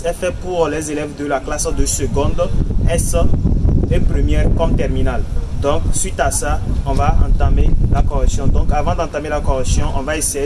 est fait pour les élèves de la classe de seconde, S et première comme terminale. Donc suite à ça, on va entamer la correction. Donc avant d'entamer la correction, on va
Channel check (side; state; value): both; identical; correlation 1.00